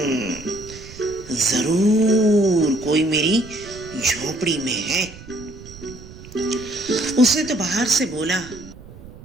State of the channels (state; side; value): noise; right; rumble, 17 dB below the sound